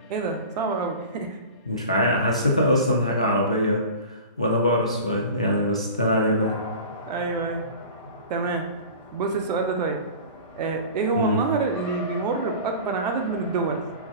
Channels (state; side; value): inverted; both; correlation -0.37